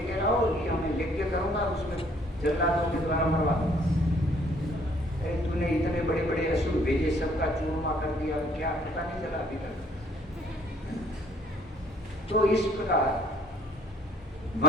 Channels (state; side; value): normal; both; correlation 0.61